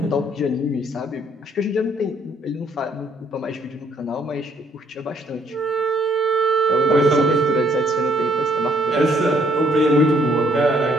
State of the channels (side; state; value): both; normal; correlation 0.66